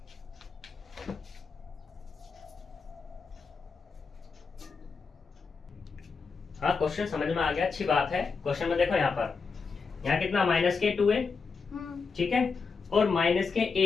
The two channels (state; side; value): quieter; right; 5.0 dB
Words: हाँ, क्वेश्चन समझ में आ गया, अच्छी बात है। क्वेश्चन में देखो यहाँ पर, यहाँ कितना माइनस के 2 है, ठीक है, और माइनस के